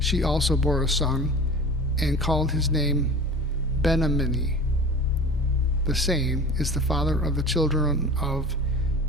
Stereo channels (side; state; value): both; normal; correlation 0.38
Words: also bore a son, and called his name Ben-ammi. The same is the father of the children of